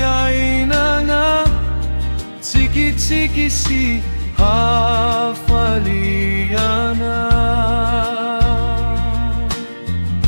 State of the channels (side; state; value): both; inverted; correlation -1.00